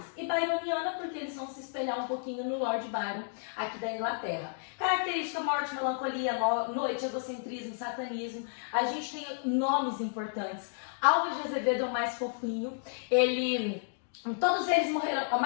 E byroniana, porque eles vão se espelhar um pouquinho no Lord Byron, aqui da Inglaterra. Característica, morte, melancolia, noite, egocentrismo, satanismo. A gente tem nomes importantes. Álvares de Azevedo é o mais fofinho. Todos eles morreram, a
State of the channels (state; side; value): silent; right; digital silence